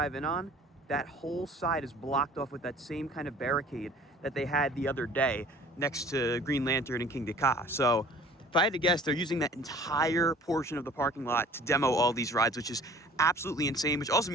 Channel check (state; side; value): normal; both; correlation 0.49